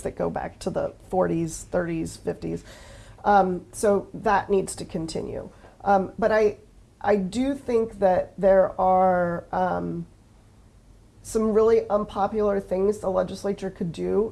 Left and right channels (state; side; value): identical; both; correlation 1.00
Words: that go back to the 40s, 30s, 50s. So that needs to continue. But I do think that there are some really unpopular things the legislature could